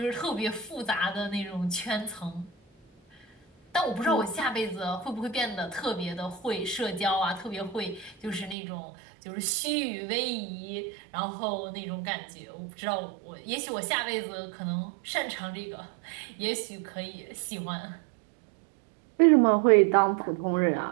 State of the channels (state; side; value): drops out; left; at 8.6 s